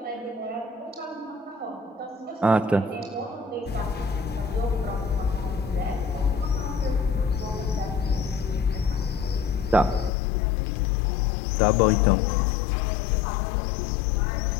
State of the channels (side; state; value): right; drops out; at 10.1 s